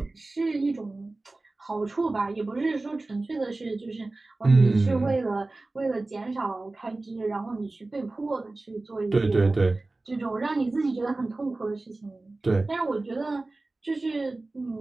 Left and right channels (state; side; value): quieter; left; 3.1 dB